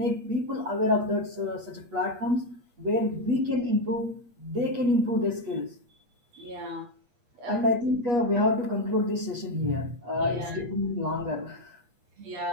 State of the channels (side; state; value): left; late; 8.4 ms